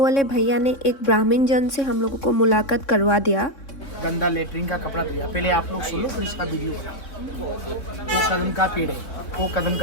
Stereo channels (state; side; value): late; right; 3.6 ms